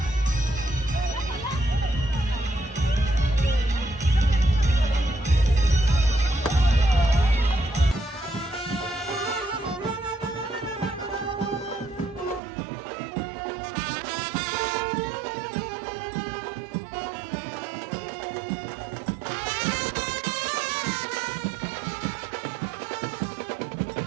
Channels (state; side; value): drops out; left; at 12.4 s